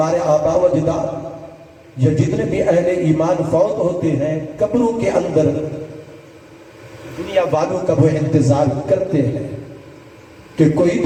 آبا و اجداد یا جتنے بھی اہل ایمان فوت ہوتے ہیں قبروں کے اندر دنیا والوں کا وہ انتظار کرتے ہیں کہ کوئی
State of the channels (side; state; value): both; identical; correlation 1.00